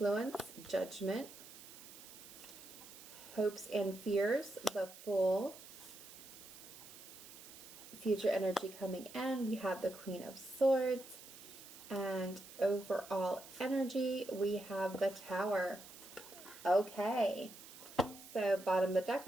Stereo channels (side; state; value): right; noise; hiss, 16 dB below the sound